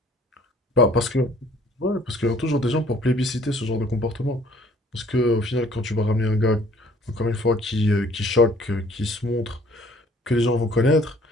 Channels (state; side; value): normal; both; correlation 0.57